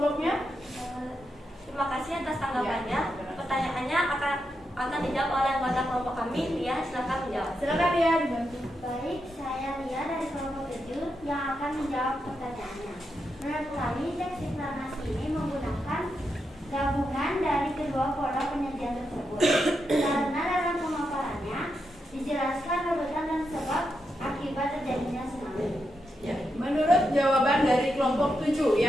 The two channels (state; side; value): normal; both; correlation 0.85